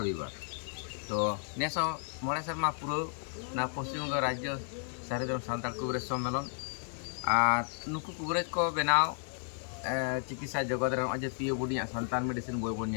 रविवार तो नेसो मोड़े शर्मा पुरो ना पश्चिम बंग राज्य सारदम सान्ताल कुबरेज सम्मेलन और नुकु कुबरेज को बनाव चिकित्सा जगत रे अजे पियो बुडिया संतान मेडिसिन बोय बोन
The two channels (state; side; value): silent; right; 56 dB below the other